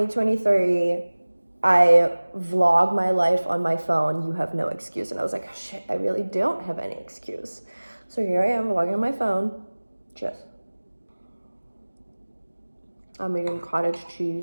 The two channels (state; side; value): inverted; both; correlation -1.00